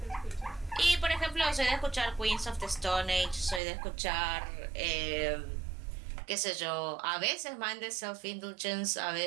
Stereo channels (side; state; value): left; drops out; at 3.6 s